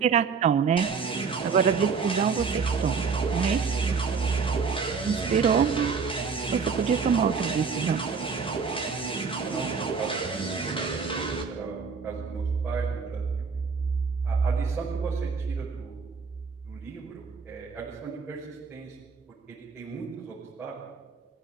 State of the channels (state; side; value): quieter; left; 5.5 dB